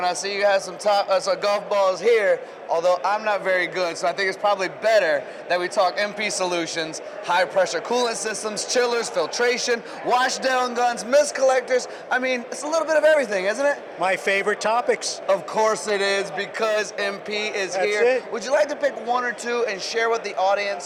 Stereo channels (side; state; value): both; identical; correlation 1.00